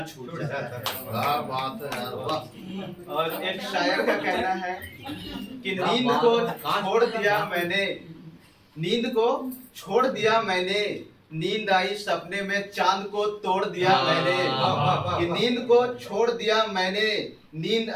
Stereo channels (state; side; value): identical; both; correlation 1.00